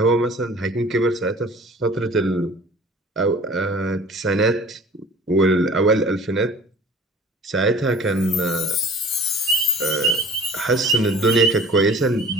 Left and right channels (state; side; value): normal; both; correlation 0.46